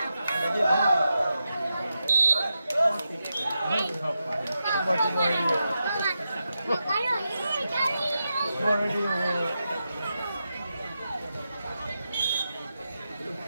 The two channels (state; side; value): inverted; both; correlation -0.88